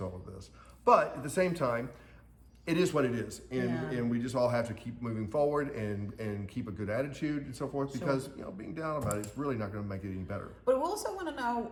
all of this. But at the same time, it is what it is, and we just all have to keep moving forward and keep a good attitude and so forth, because being down about it is really not going to make it any better. But we also want to know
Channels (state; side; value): identical; both; correlation 1.00